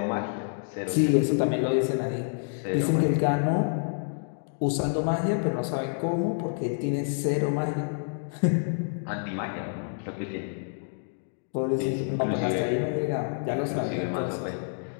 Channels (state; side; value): silent; right; digital silence